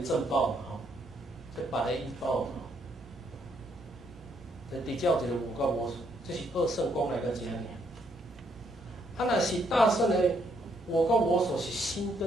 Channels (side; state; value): both; normal; correlation 0.73